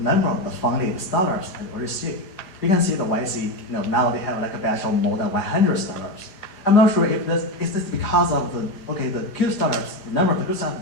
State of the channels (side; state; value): right; late; 4.8 ms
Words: number of the funded startups at early stage. You can see the YC, now they have like a batch of more than 100 startups. I'm not sure if is this because of the good startups, the number of the good